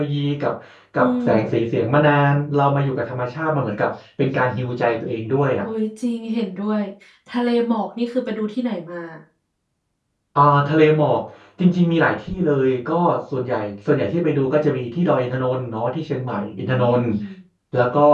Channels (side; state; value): both; identical; correlation 1.00